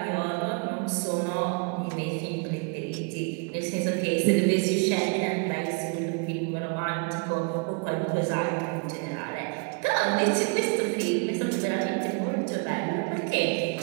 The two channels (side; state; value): left; quieter; 34.1 dB